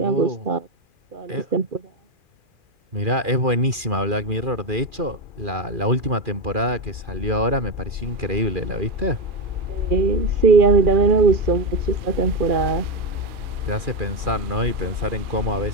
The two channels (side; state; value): left; late; 2.4 ms